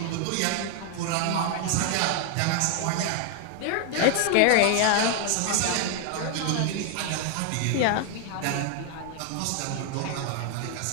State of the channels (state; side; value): different; both; correlation 0.00